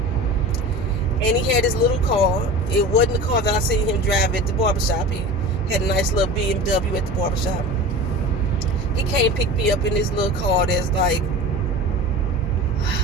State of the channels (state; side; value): normal; both; correlation 0.34